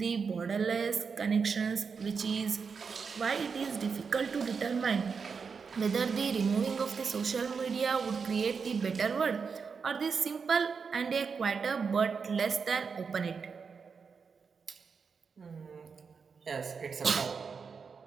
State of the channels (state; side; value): quieter; left; 5.6 dB